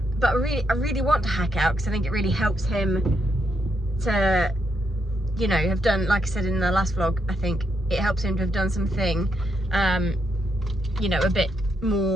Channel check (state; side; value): normal; both; correlation 0.79